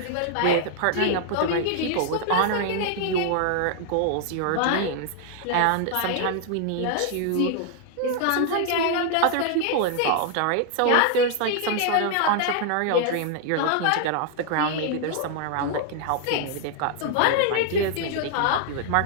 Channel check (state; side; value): different; both; correlation 0.00